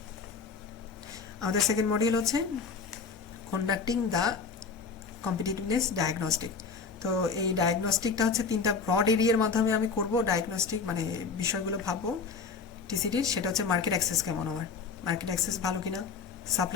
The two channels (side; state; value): right; quieter; 5.2 dB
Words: আমাদের সেকেন্ড মডিউল হচ্ছে কন্ডাক্টিং দ্য কম্পিটিটিভনেস ডায়াগনস্টিক। তো এই ডায়াগনস্টিকটা হচ্ছে 3টা ব্রড এরিয়ার মাধ্যমে আমি করব ডায়াগনস্টিক, মানে বিষয়গুলো ভাববো টিসিডির। সেটা হচ্ছে মার্কেট অ্যাক্সেস কেমন, আমার মার্কেট অ্যাক্সেস ভালো কিনা,